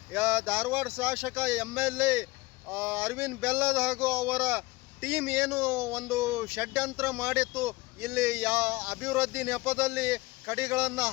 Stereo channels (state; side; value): quieter; right; 22.0 dB